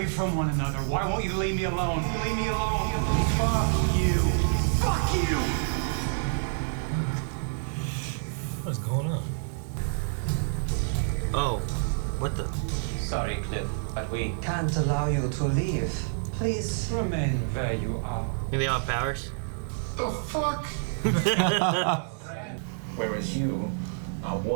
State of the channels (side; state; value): left; silent; 59 dB below the other